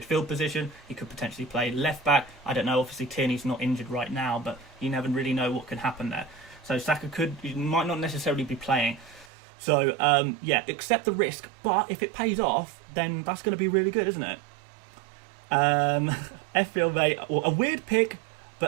position. He could potentially play left back. I don't know, obviously Tierney's not injured right now, but you never really know what can happen there. So Saka might not necessarily be playing. So, yeah, accept the risk, but if it pays off, then that's going to be really good, isn't it? FPL mate, a weird pick,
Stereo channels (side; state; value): left; drops out; at 9.2 s